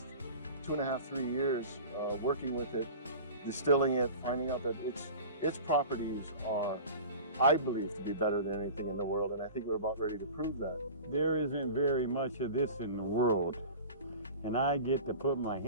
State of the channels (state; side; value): inverted; both; correlation -0.36